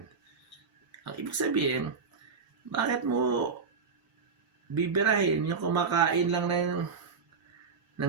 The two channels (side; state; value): left; quieter; 5.3 dB